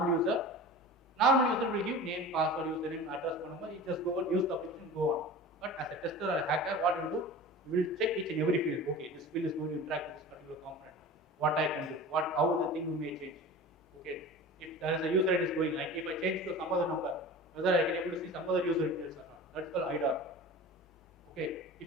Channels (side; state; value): both; normal; correlation 0.35